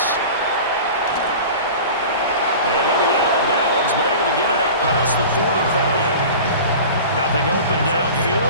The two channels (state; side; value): inverted; both; correlation -0.37